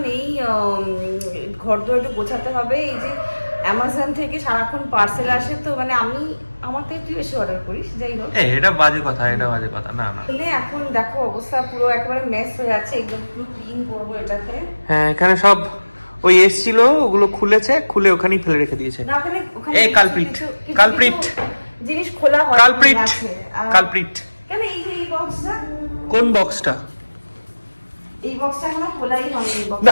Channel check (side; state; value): both; inverted; correlation -1.00